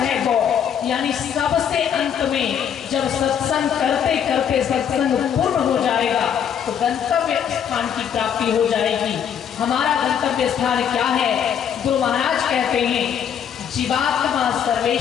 गौ, यानी सबसे अंत में जब सत्संग करते करते सत्संग पूर्ण हो जाएगा तो गंतव्य स्थान की प्राप्ति हो जाएगी। हमारा गंतव्य स्थान क्या है? गुरु महाराज कहते हैं जीवात्मा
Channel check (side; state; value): right; quieter; 8.5 dB